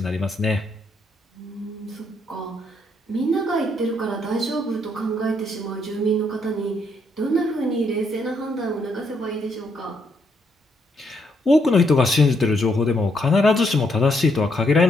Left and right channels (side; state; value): both; normal; correlation 0.74